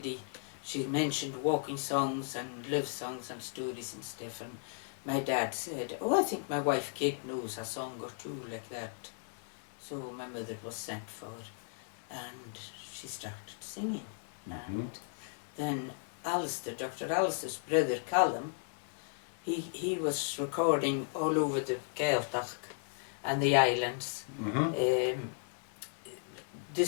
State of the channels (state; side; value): silent; right; digital silence